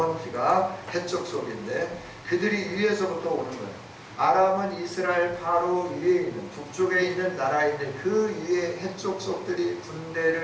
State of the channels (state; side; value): identical; both; correlation 1.00